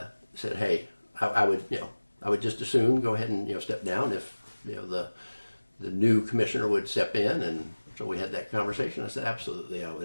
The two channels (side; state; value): both; inverted; correlation -1.00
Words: said, hey, I would just as soon go ahead and step down if the new commissioner would step in, and so we had that conversation. I said absolutely I